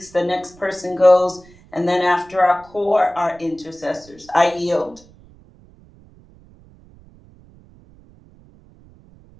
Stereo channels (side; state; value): right; noise; rumble, 26 dB below the sound